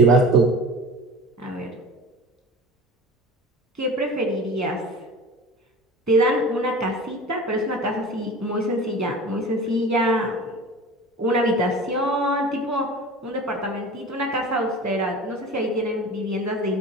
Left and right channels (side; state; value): both; normal; correlation 0.37